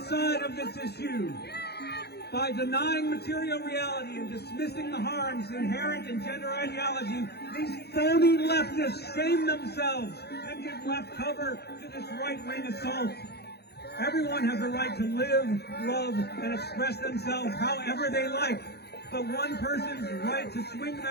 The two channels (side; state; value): right; late; 0.48 ms